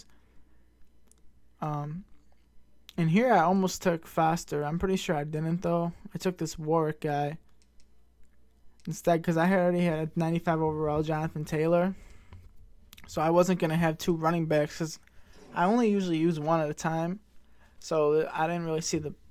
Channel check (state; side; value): identical; both; correlation 1.00